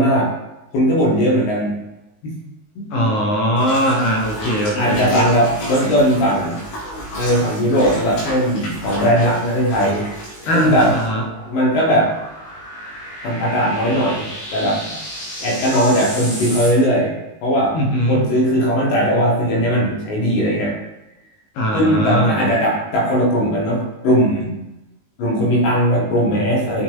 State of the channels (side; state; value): right; late; 19 ms